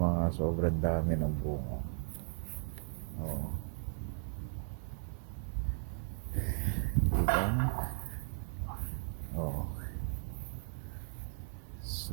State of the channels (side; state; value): left; silent; digital silence